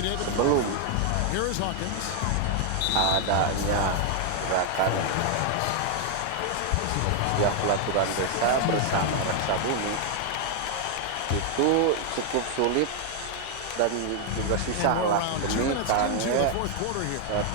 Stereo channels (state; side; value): different; both; correlation 0.00